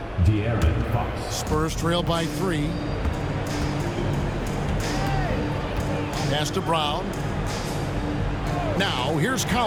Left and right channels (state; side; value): identical; both; correlation 1.00